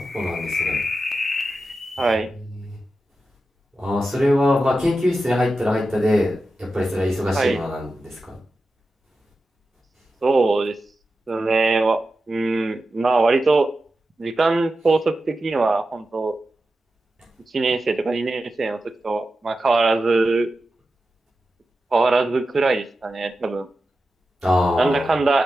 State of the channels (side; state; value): both; normal; correlation 0.92